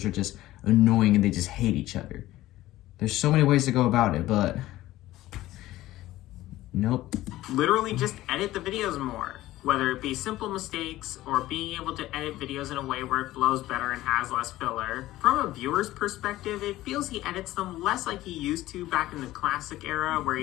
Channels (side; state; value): right; quieter; 16.0 dB